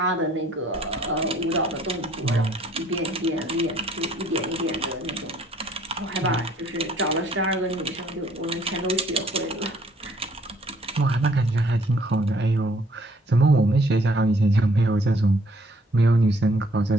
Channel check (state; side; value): normal; both; correlation 0.62